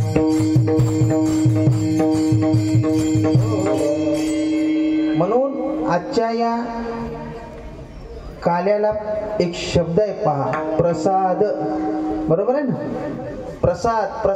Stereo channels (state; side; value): identical; both; correlation 1.00